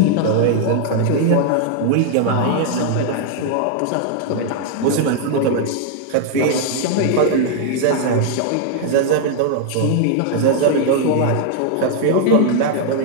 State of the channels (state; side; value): different; both; correlation 0.00